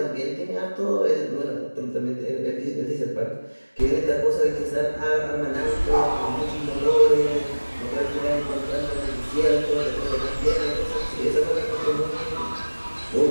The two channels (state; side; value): inverted; both; correlation -1.00